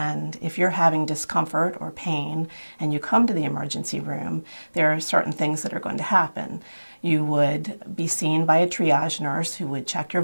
if you're having discomfort or pain and you come to the emergency room, there are certain things that are going to happen. You would be seen by a triage nurse who would check your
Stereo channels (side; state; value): both; inverted; correlation -1.00